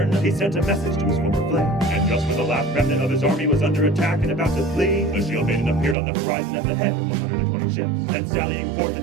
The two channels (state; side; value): drops out; left; at 6.0 s